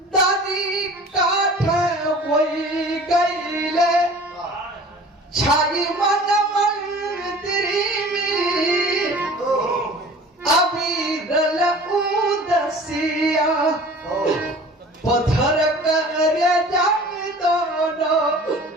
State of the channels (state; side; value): normal; both; correlation 0.44